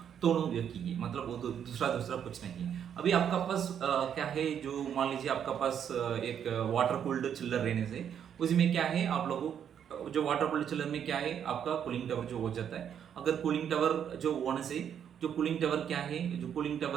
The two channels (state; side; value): quieter; left; 8.7 dB